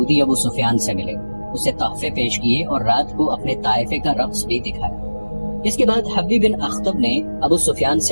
ابو سفیان سے ملے، اسے تحفے پیش کیے اور رات کو اپنے طائفے کا رقص بھی دکھایا۔ اس کے بعد حبی بن اخطب نے ابو سفیان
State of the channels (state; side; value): inverted; both; correlation -1.00